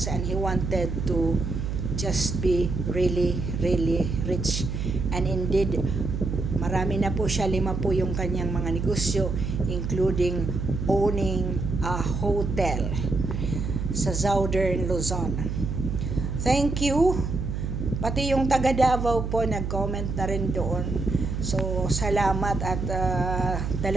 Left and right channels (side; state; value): right; noise; hum, 3 dB below the sound